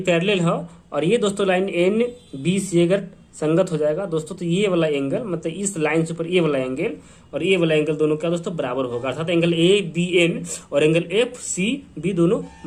पैरेलल है और ये दोस्तों लाइन एन बी सी अगर संगत हो जाएगा दोस्तों तो ये वाला एंगल मतलब इस लाइन से ऊपर ये वाला एंगल और ये वाला एंगल दोनों क्या दोस्तों बराबर होगा। अर्थात एंगल ए बी एन और एंगल एफ सी बी दोनों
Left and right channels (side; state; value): both; identical; correlation 1.00